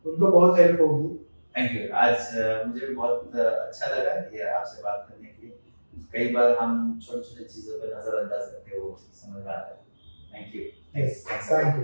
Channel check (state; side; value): inverted; both; correlation -1.00